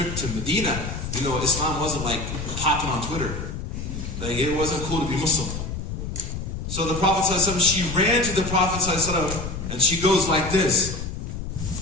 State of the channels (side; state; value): left; noise; rumble, 6 dB below the sound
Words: to Medina. You know, Islam wasn't like popping on Twitter. Like, it wasn't cool to be Muslim. So the Prophet ﷺ, she ran to the Prophet ﷺ and she goes like this.